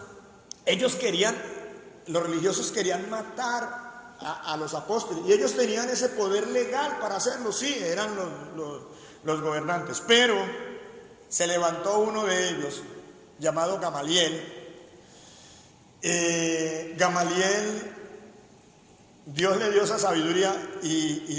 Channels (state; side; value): identical; both; correlation 1.00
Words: los religiosos querían matar a los apóstoles, y ellos tenían ese poder legal para hacerlo. Sí, eran los gobernantes, pero se levantó uno de ellos llamado Gamaliel. Gamaliel, Dios le dio esa sabiduría y